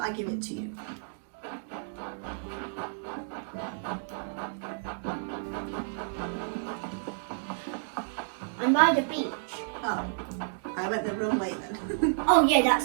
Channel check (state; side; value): silent; left; digital silence